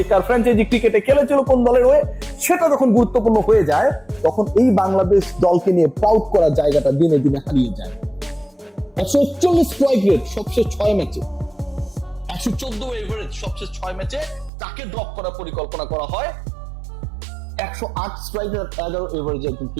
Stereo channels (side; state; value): left; drops out; at 14.5 s